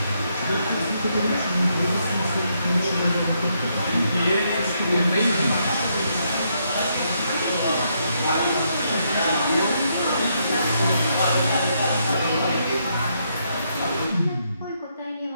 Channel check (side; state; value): both; inverted; correlation -0.77